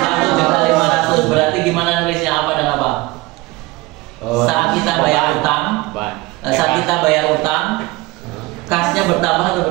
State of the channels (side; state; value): left; quieter; 21.4 dB